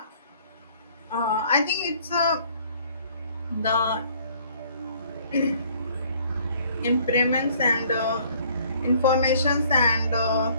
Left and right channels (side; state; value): both; inverted; correlation -0.59